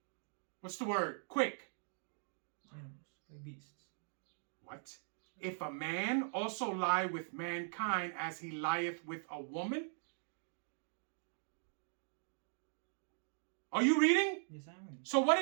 What's the word? Quick. animals, like beasts. What? If a man also lie with mankind as he lieth with a woman? Are you reading? Yes, I'm reading. So what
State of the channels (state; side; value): silent; left; digital silence